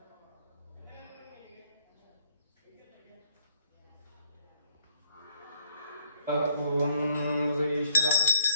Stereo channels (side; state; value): both; inverted; correlation -0.66